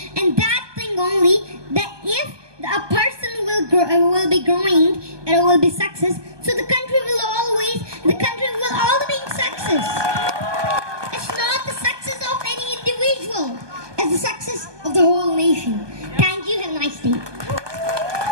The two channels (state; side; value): late; left; 1.2 ms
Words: and that thing only, that if a person will be growing and will be success, so the country will all be in success. It's not the success of any individual, it's the success of the whole nation. Thank you, have a nice day.